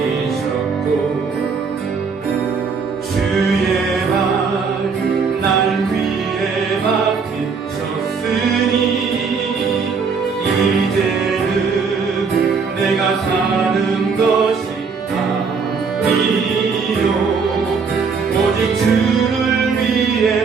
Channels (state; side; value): quieter; left; 5.3 dB